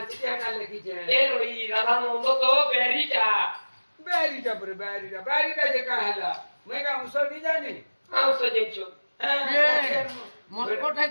এটা লিখিছে এ রই রাধানন্দ তো বেরিটা बैरिटा जे कहेला मैं का उसो नहीं जानी আও সজেছো মন কোঠাই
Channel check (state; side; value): inverted; both; correlation -1.00